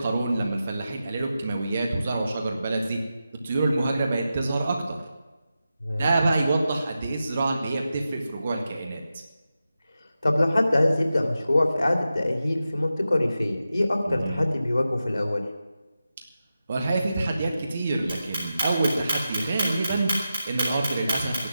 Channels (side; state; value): both; inverted; correlation -0.91